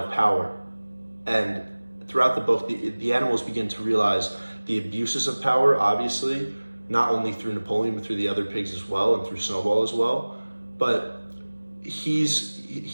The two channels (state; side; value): inverted; both; correlation -1.00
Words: power, and throughout the book, the animals begin to realize the abuses of power, obviously, not only through Napoleon, but through the other pigs as well, and through Snowball as well. But